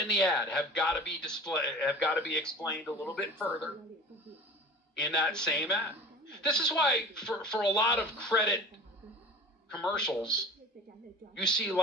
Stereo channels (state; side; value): normal; both; correlation 0.39